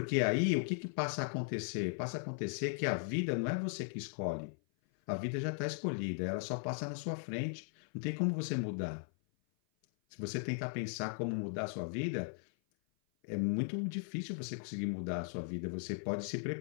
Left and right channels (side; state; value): right; silent; 53 dB below the other